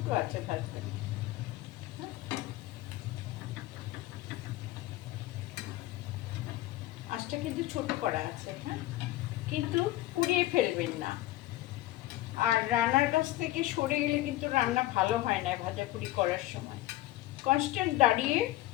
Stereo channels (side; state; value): right; quieter; 16.6 dB